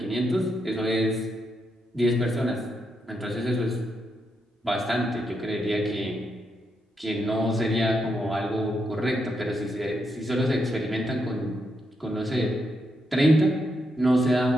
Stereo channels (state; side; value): normal; both; correlation 0.81